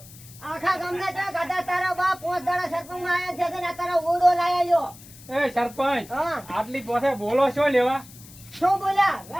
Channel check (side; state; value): left; noise; hiss, 20 dB below the sound